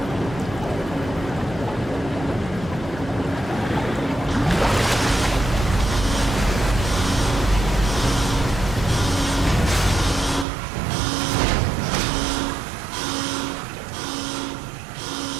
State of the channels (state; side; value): drops out; left; at 10.5 s